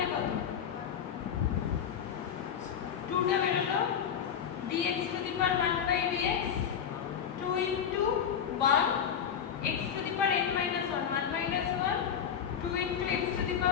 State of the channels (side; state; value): right; quieter; 8.2 dB